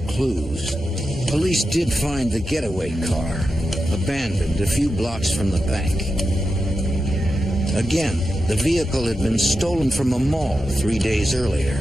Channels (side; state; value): both; normal; correlation 0.89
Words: clues, police did find the getaway car, abandoned a few blocks from the bank. Again, the vehicle had been stolen from a mall 3 days earlier.